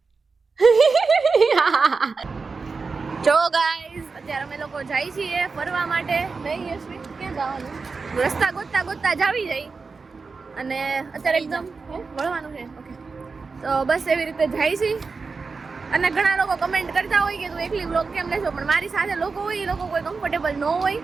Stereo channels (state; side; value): quieter; left; 4.5 dB